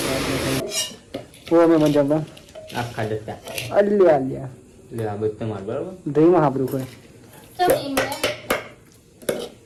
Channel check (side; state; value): both; identical; correlation 1.00